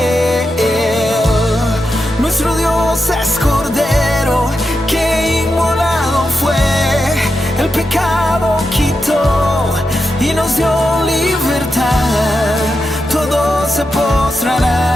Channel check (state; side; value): normal; both; correlation 0.88